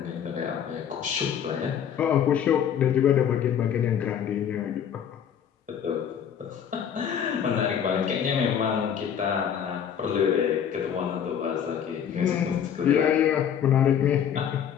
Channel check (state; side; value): quieter; right; 8.6 dB